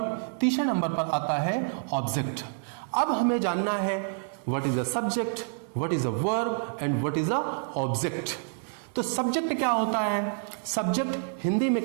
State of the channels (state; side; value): silent; left; digital silence